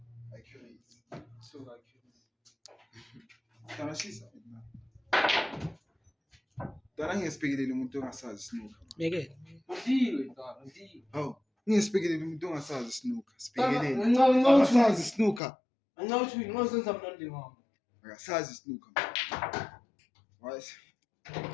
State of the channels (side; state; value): right; drops out; at 15.4 s